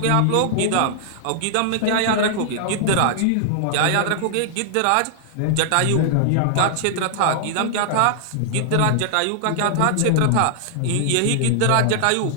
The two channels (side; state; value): both; different; correlation -0.01